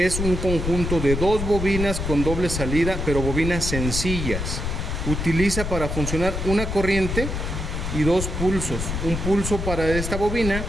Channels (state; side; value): noise; left; rumble, 3 dB below the sound